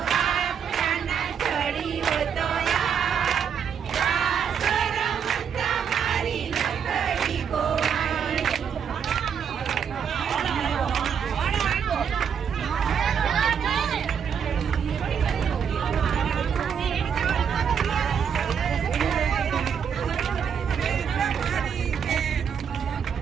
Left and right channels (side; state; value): left; quieter; 7.4 dB